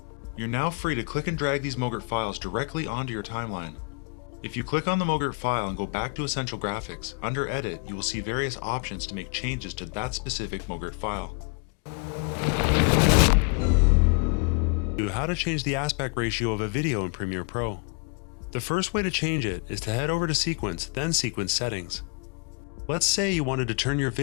You're now free to click and drag these MOGRT files directly onto your timeline. If you click on the MOGRT file and go back to Essential Graphics, under Edit, you will see various options to make changes to that specific MOGRT file. How to change the aspect ratio of a video in Premiere Pro. The first way to change it is to head over to Sequence, then Sequence Settings. Let's say you wanted to turn your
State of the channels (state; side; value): quieter; right; 35.4 dB